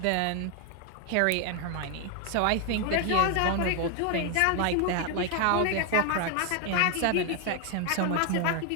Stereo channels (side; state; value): both; different; correlation 0.01